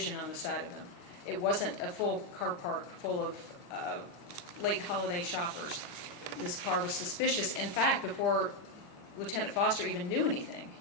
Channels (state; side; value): late; right; 40 ms